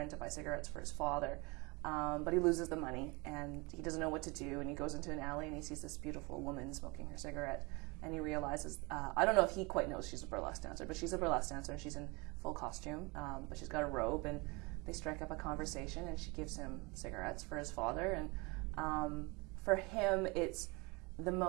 to buy cigarettes for his father, but he loses the money, and he doesn't know what to do. And he goes into an alley, and he sees this beautiful woman smoking her cigarette, and he realizes, I don't know if he quite knows she's a burlesque dancer, but she's a burlesque dancer, and she's in full costume, but she's got a robe, and they strike up a conversation, and she gives him cigarettes for his father. And for him,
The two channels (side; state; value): left; quieter; 27.1 dB